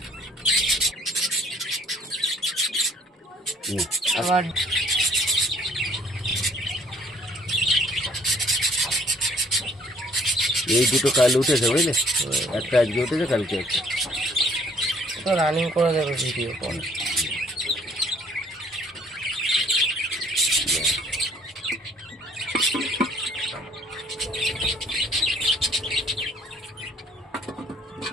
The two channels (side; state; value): both; normal; correlation 0.60